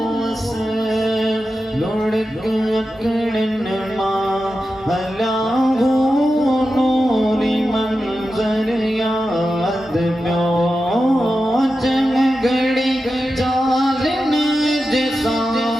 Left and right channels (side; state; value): both; normal; correlation 0.91